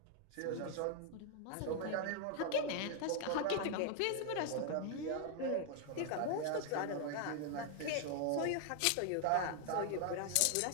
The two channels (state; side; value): different; both; correlation 0.00